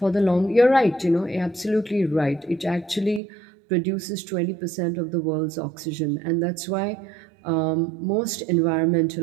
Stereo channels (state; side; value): drops out; left; at 3.2 s